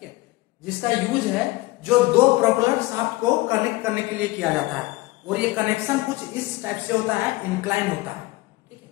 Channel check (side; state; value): right; quieter; 20.6 dB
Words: है, जिसका यूज है जो दो प्रोपेलर शाफ्ट को कनेक्ट करने के लिए किया जाता है, और ये कनेक्शन कुछ इस टाइप से होता है, इंक्लाइन होता है, ठीक है।